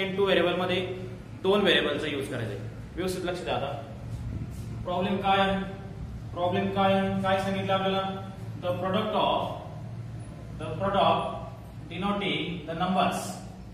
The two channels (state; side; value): identical; both; correlation 1.00